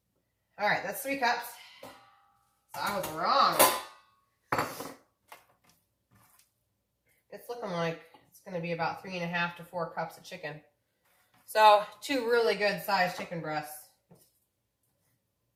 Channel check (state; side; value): identical; both; correlation 1.00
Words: all right, that's 3 cups. So I was wrong. It's looking like it's going to be about 3.5 to 4 cups of chicken. So 2 really good sized chicken breasts.